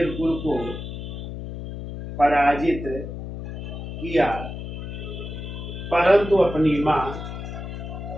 कुल को पराजित किया, परंतु अपनी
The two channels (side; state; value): left; noise; hum, 8 dB below the sound